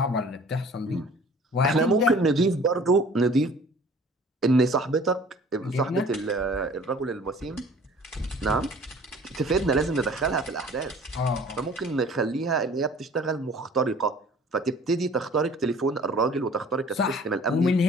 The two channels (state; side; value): normal; both; correlation 0.50